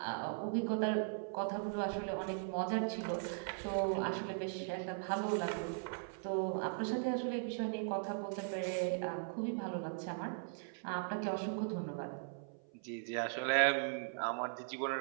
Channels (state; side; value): silent; left; 52 dB below the other